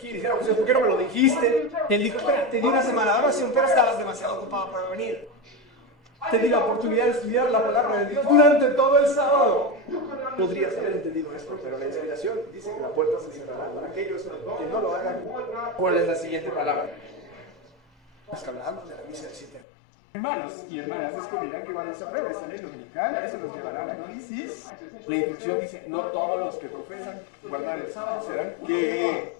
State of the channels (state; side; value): drops out; right; at 19.6 s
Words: dijéramos, ¿por qué no me lo dijiste? Él dijo, espera, te di una semana, ahora sí, pero estabas demasiado ocupado para venir. Te di la oportunidad de estudiar la palabra de Dios durante todo el sábado. Podrías haber entendido esto, pero la inspiración dice que la puerta se cerrará para aquellos que no lo hagan. ¿Cuál es la siguiente palabra? Los que hablamos de la misa del 7. Hermanos y hermanas descubrirán que cuando se apruebe esta ley dominical, eso nos llevará a la crisis. La instrucción dice, no todos los que profesan guardar el sábado serán que